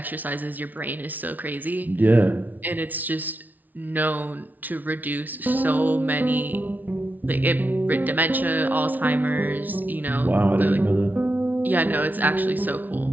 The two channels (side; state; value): left; late; 0.080 ms